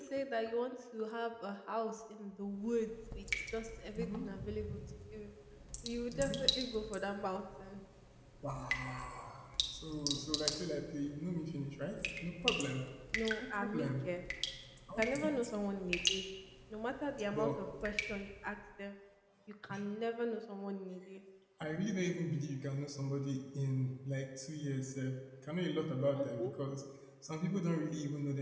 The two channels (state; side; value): identical; both; correlation 1.00